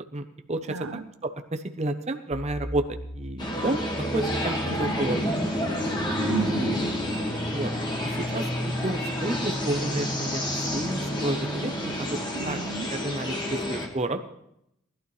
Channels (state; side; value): normal; both; correlation 0.59